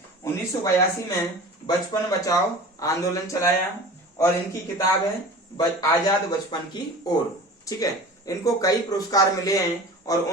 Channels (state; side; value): normal; both; correlation 0.37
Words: 1982 में बचपन बचाओ आंदोलन चलाया और इनकी किताब है आजाद बचपन की ओर। ठीक है, इनको कई पुरस्कार मिले हैं और